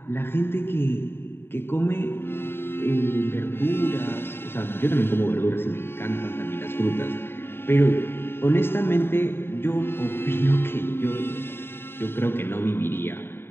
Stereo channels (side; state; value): right; late; 0.11 ms